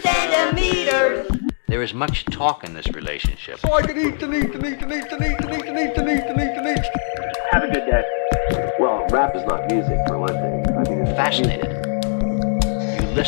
centimeters. There is much talk in this relationship. So I can eat and eat and eat and eat and eat and eat and eat and eat and eat and eat. Have a good day. Well, rap is not music, for one thing. I mean, it's Fascinated. You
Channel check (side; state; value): right; silent; digital silence